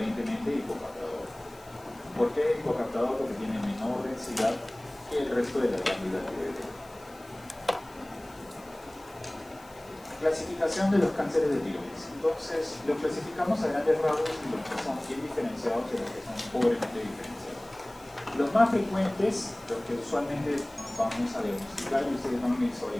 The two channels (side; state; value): left; noise; hiss, 25 dB below the sound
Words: hipocaptador. ¿Por qué hipocaptador? Porque tiene menor densidad que el resto de la glándula tiroidea. Clasificación de los cánceres de tiroides. Entonces, los clasificamos a grandes rasgos en los que son bien diferenciados y los que son pobremente diferenciados. Los más frecuentes, los que usualmente vamos a diagnosticar y ustedes van a